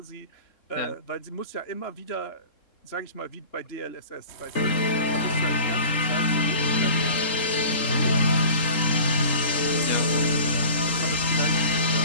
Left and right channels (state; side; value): late; right; 3.8 ms